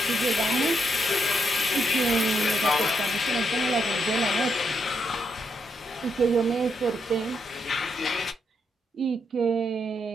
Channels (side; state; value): both; normal; correlation 0.79